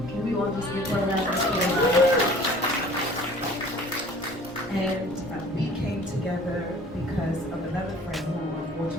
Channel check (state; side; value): normal; both; correlation 0.49